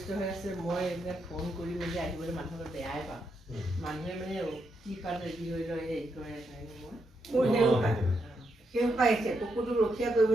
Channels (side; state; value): both; normal; correlation 0.81